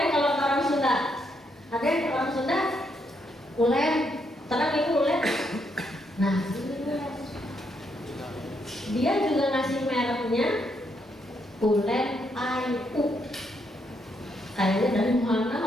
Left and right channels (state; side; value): normal; both; correlation 0.76